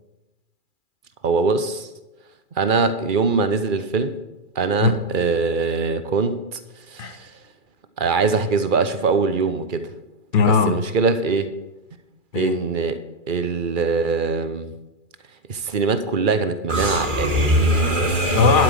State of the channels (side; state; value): left; late; 2.4 ms